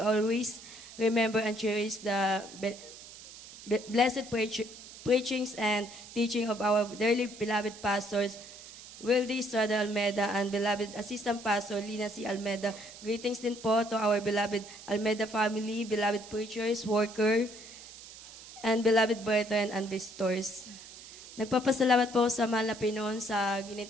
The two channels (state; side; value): noise; right; hiss, 16 dB below the sound